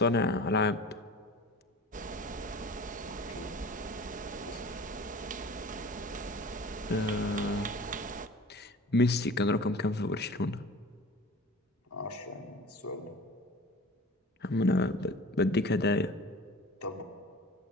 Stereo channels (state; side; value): normal; both; correlation 0.40